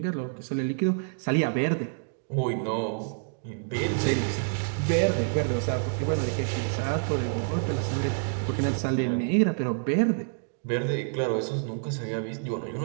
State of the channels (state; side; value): silent; left; digital silence